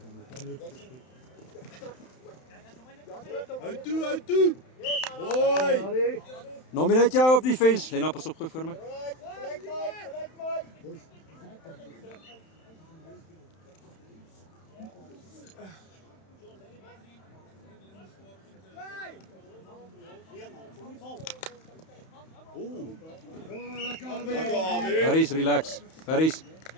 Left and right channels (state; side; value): late; right; 31 ms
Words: Uit toe. Hoi. Nominate jou op die fence. Lena, pas op, gooi voor my. Harris, relax. Harris,